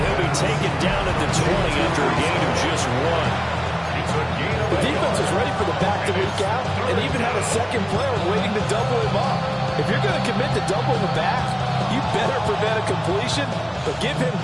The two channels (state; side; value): identical; both; correlation 1.00